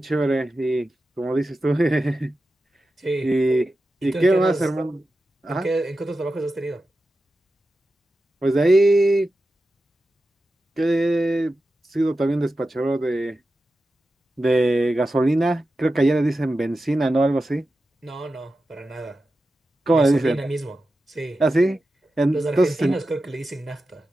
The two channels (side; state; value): both; normal; correlation 0.92